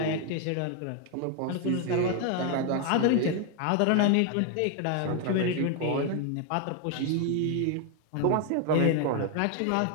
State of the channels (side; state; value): both; different; correlation 0.01